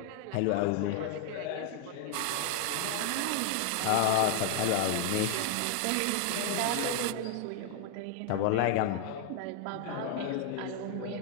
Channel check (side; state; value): both; different; correlation 0.00